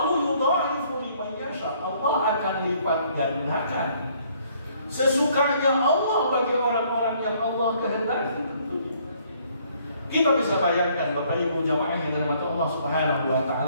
yudha'ifu liman yasha, Allah akan lipat gandakan sesukanya Allah bagi orang-orang yang Allah kehendaki. Kita bisa bayangkan Bapak Ibu jamaah yang dirahmati Allah Subhanahu wa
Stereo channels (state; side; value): inverted; both; correlation -0.64